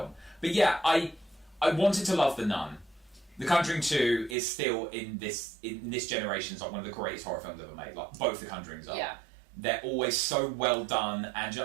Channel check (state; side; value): drops out; left; at 4.4 s